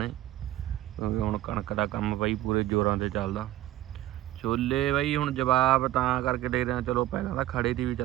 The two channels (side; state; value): left; quieter; 14.8 dB